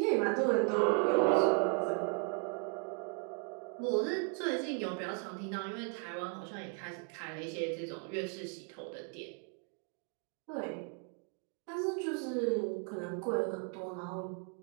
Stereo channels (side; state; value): left; quieter; 38.4 dB